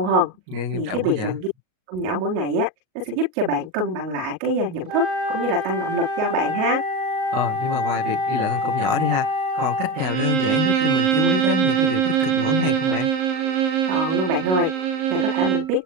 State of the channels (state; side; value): late; left; 38 ms